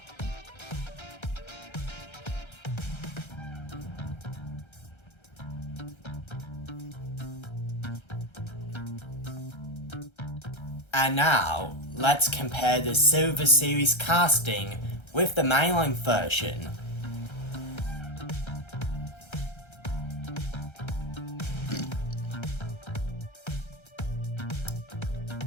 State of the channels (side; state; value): right; late; 1.3 ms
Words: And now, let's compare the Silver Series casting with the mainline version.